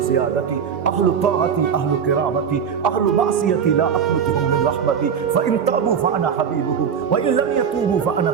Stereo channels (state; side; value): quieter; left; 7.3 dB